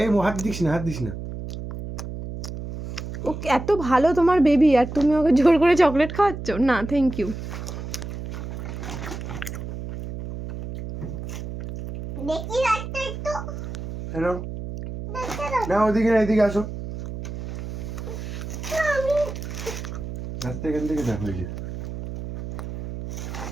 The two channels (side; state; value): right; noise; hum, 8 dB below the sound